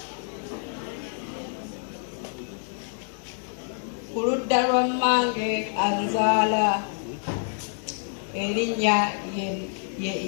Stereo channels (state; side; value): silent; right; 60 dB below the other